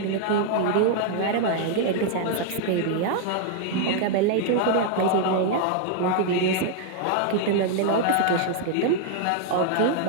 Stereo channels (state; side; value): different; both; correlation -0.01